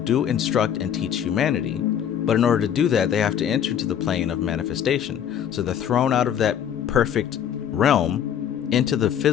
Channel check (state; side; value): quieter; right; 9.2 dB